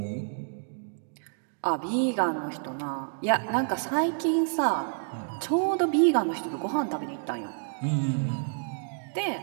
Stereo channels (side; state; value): left; silent; digital silence